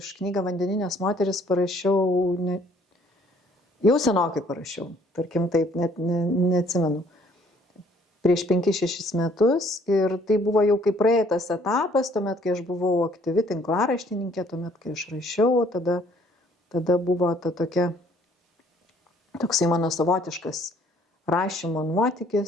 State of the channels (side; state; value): both; normal; correlation 0.61